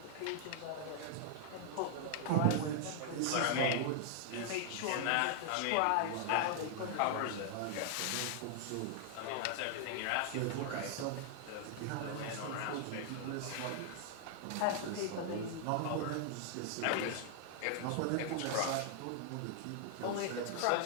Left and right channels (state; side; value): different; both; correlation 0.00